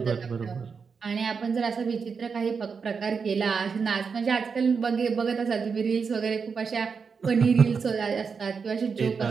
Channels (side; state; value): left; quieter; 5.6 dB